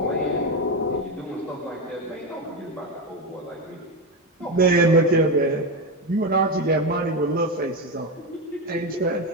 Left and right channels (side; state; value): both; normal; correlation 0.13